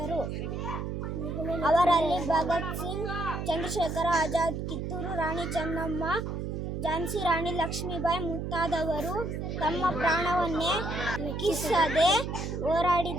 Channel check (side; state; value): right; noise; hum, 4 dB below the sound